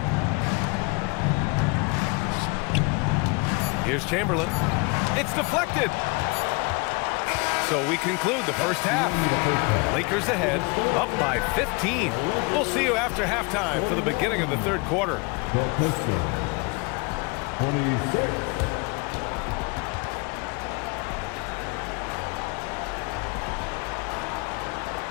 Here's Chamberlain. It's deflected. So we conclude the first half. Lakers ahead, up by 15. We'll see you after halftime for the beginning of the third quarter. The Pistons. 26.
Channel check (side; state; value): right; quieter; 29.1 dB